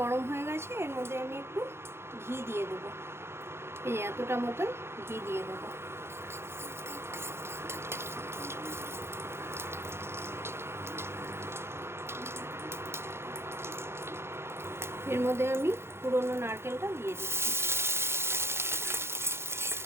হয়ে গেছে, এর মধ্যে আমি একটু ঘি দিয়ে দেবো। এই এতটা মতন ঘি দিয়ে দেবো। এর মধ্যে আমি পুরনো নারকেলটা দিয়ে দিচ্ছি।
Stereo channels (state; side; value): late; left; 0.12 ms